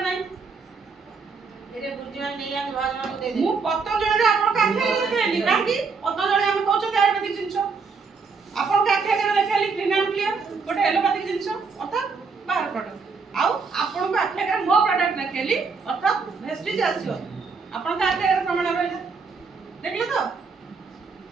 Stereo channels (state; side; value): quieter; left; 4.9 dB